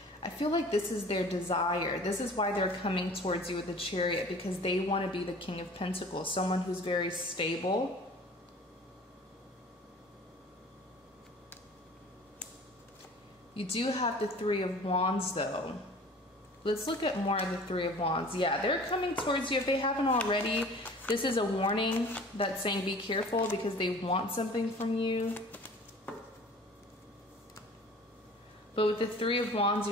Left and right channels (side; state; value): both; normal; correlation 0.46